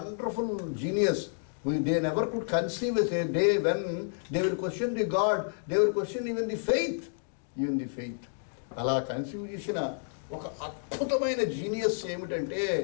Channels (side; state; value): right; silent; digital silence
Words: genius they never could conceive as a day when they will question the god, they will question even the faith. అలా కన్సీవ్ చేసిన ఒక అద్భుతమైన జీనియస్ ఏమిటంటే